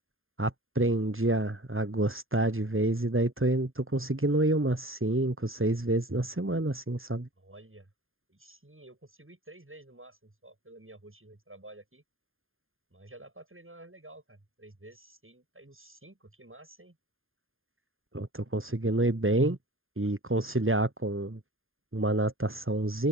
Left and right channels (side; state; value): left; late; 0.60 ms